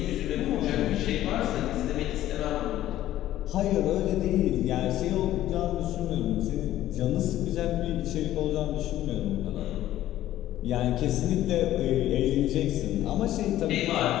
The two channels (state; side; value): quieter; right; 13.6 dB